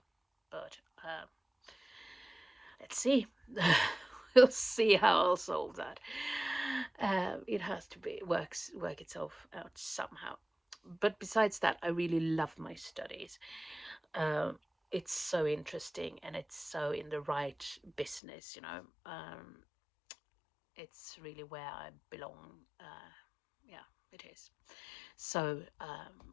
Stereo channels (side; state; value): right; drops out; at 18.2 s